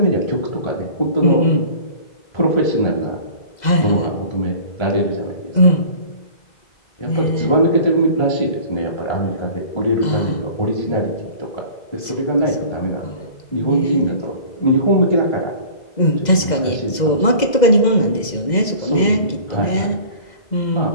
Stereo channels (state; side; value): late; right; 2.0 ms